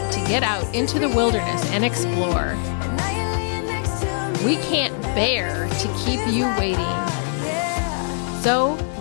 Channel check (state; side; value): silent; right; 61 dB below the other